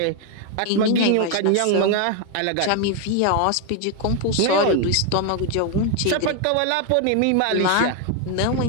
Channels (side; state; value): both; different; correlation 0.01